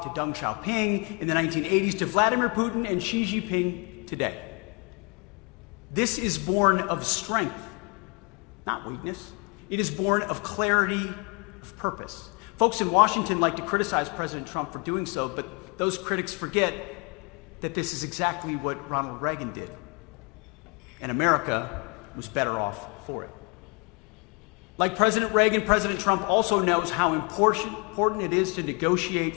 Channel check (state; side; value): quieter; right; 32.7 dB